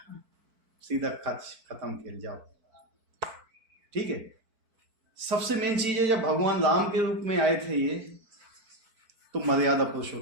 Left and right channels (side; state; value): left; late; 4.5 ms